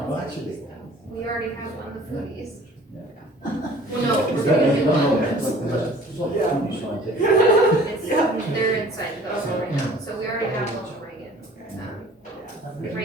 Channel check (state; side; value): normal; both; correlation 0.50